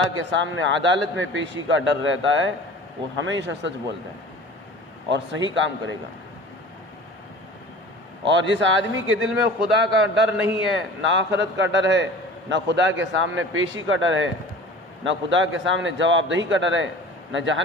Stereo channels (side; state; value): both; normal; correlation 0.41